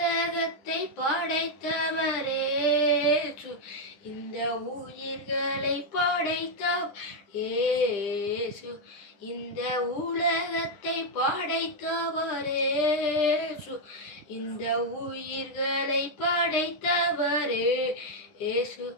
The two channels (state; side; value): late; right; 9.9 ms